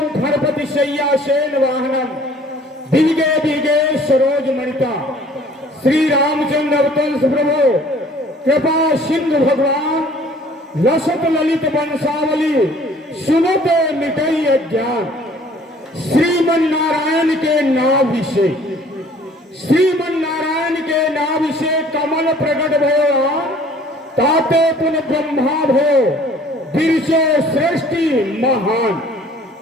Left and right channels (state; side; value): normal; both; correlation 0.54